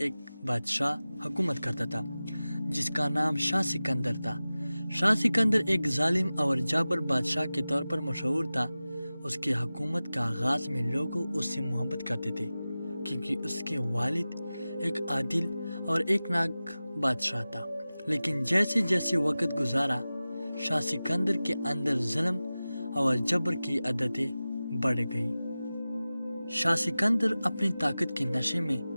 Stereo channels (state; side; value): inverted; both; correlation -0.96